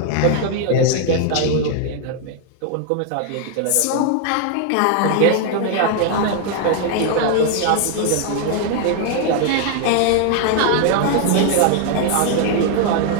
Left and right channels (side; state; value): both; different; correlation 0.00